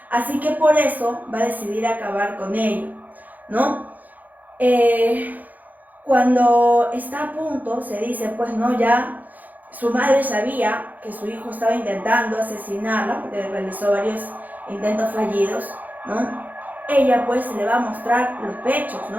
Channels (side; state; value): left; late; 0.082 ms